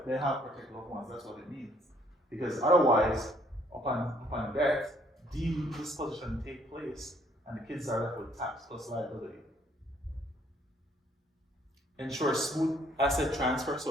they have protect loved ones, that's what it means. Because otherwise, upon death, deemed disposition take place and the kids are left with tax plus liability. Ensure smooth asset transfer,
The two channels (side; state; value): both; normal; correlation 0.64